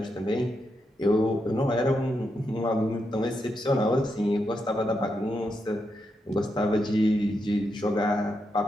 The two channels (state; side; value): normal; both; correlation 0.84